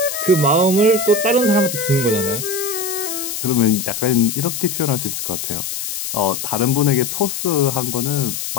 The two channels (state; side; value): noise; left; hiss, 5 dB below the sound